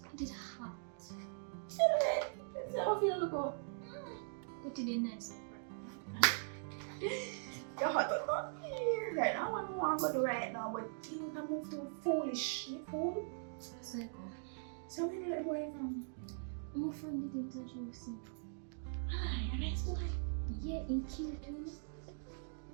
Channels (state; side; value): silent; left; digital silence